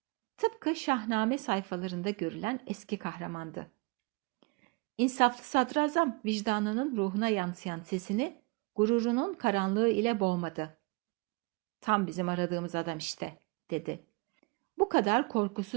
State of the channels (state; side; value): quieter; left; 28.2 dB